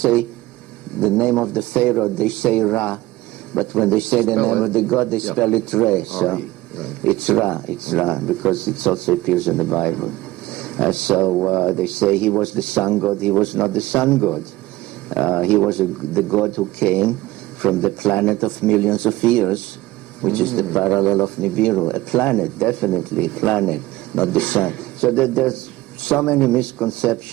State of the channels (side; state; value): left; quieter; 18.1 dB